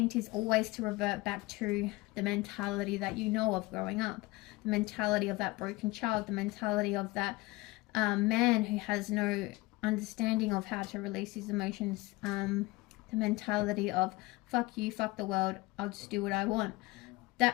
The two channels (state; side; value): quieter; right; 21.6 dB